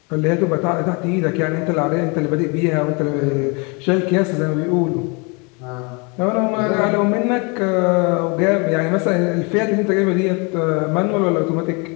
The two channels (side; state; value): right; quieter; 31.1 dB